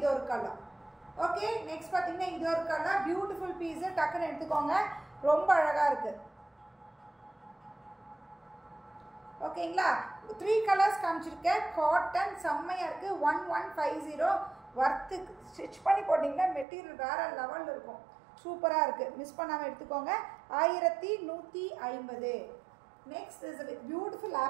ஒரு கலர். ஓகே, நெக்ஸ்ட் பார்த்தீங்கன்னா இது ஒரு கலர், பியூட்டிஃபுல் பீஸு, டக்குன்னு எடுத்துக்கோங்க, ரொம்ப அழகாக இருக்குது. ஓகேங்களா, 3 கலர்ஸ் காமிச்சிருக்கேன். காட்டன் செம்மையாக இருக்குது. 1150 ஒர்த்து. ஸ்டிச் பண்ணி போட்டிங்கன்னா மெட்டீரியல் வேறு லெவலில் இருக்கும், சூப்பராக இருக்குது. மிஸ் பண்ணாமல் எடுத்துக்கோங்க. 1150. நெக்ஸ்ட் இஸ் பியூட்டிஃபுல்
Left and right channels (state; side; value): drops out; left; at 16.7 s